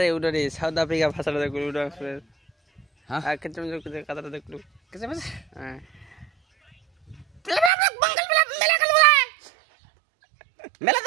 ওটা রে সাউথ আফ্রিকা ভাষাটা দেখলু ওটা হ্যাঁ আর কেমন কথাটা দেখলু কিছু বুঝ হ্যাঁ মেলা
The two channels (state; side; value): drops out; left; at 7.7 s